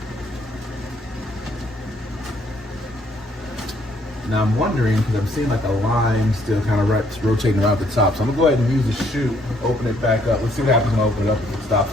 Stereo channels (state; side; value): normal; both; correlation 0.67